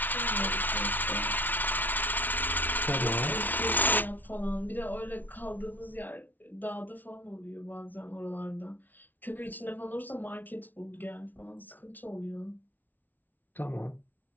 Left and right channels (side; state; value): right; late; 0.082 ms